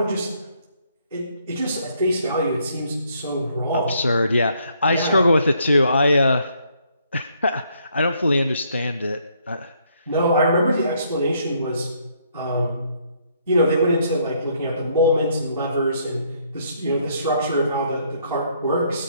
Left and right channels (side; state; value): both; inverted; correlation -0.69